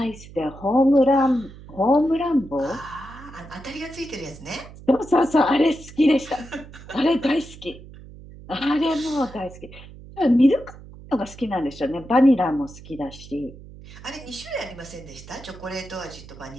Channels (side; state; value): right; noise; hum, 17 dB below the sound